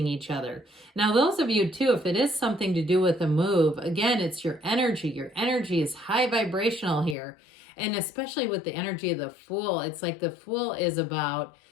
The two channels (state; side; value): drops out; right; at 7.2 s